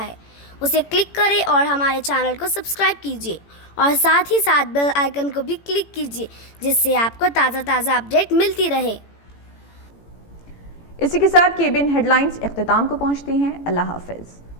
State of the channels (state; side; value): late; right; 18 ms